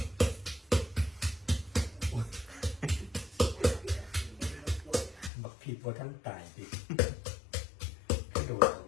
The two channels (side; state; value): right; drops out; at 5.3 s